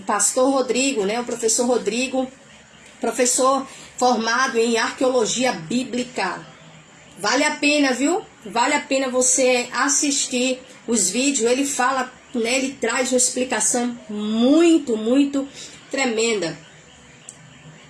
Pastor Rodrigo, né? O professor Rodrigo, professor formado em arqueologia bíblica. Vale a pena, viu? Vale a pena você assistir os vídeos. Ele fala, né? Ele traz uma explicação muito, muito tremenda.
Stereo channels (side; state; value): both; identical; correlation 1.00